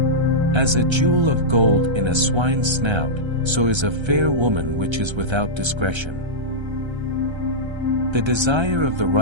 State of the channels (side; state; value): left; late; 1.3 ms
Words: As a jewel of gold in a swine's snout, so is a fair woman which is without discretion. The desire of the